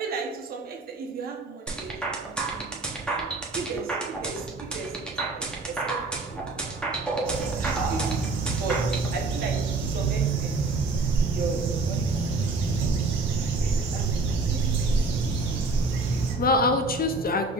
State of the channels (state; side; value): quieter; left; 3.1 dB